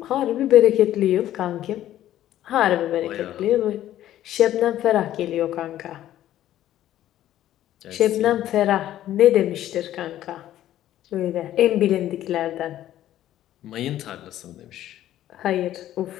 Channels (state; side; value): quieter; right; 12.8 dB